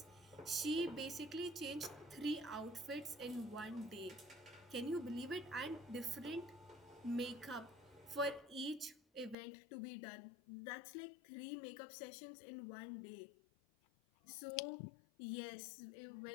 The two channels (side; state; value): right; drops out; at 9.3 s